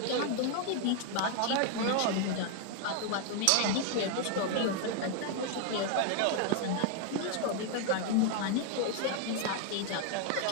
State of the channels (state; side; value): different; both; correlation 0.00